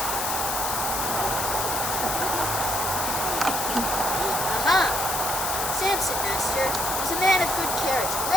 Samson, master, was a man of good carriage,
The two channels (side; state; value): left; noise; hiss, 1 dB below the sound